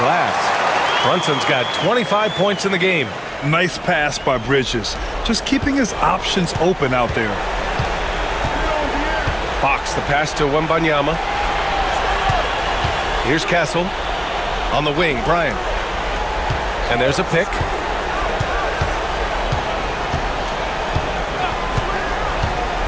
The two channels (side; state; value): both; identical; correlation 1.00